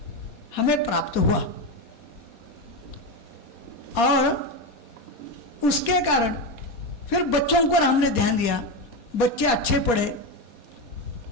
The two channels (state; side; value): late; right; 4.2 ms